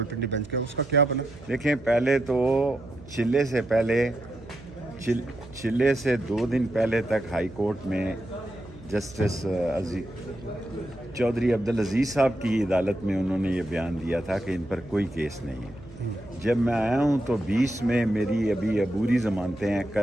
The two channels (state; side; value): noise; right; hum, 19 dB below the sound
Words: bench کا، اس کا کیا بنا؟ دیکھیں، پہلے تو چلے سے 2 دن پہلے تک ہائی کورٹ میں جسٹس چودھری عبدالعزیز صاحب کی عدالت میں انہوں نے یہ بیان دیا تھا کہ ان پر کوئی کیس نہیں ہے۔ جب میں آیا ہوں تو 20 میں میری ابھی عبوری ضمانتیں ہیں،